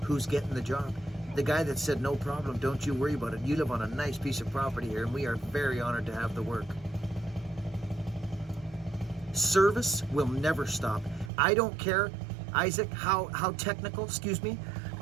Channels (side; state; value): left; drops out; at 11.3 s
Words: Who's getting the job? The guy that said, no problem, don't you worry about it. You live on a nice piece of property here and we are very honored to have the work. Service will never stop. I don't care, Isaac, how technical, sorry,